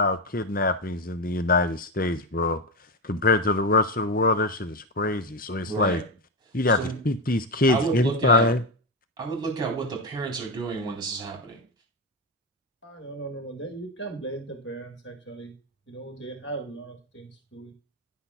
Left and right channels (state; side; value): normal; both; correlation 0.12